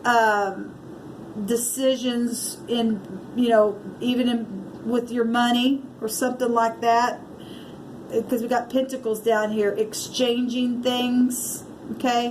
decisions in, you know, even with your money or something like that. Because we got Pentacles down here, exchanging things,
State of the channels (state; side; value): identical; both; correlation 1.00